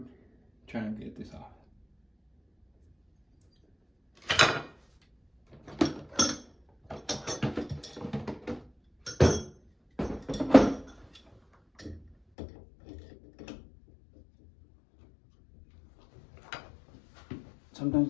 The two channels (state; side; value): drops out; right; at 12.2 s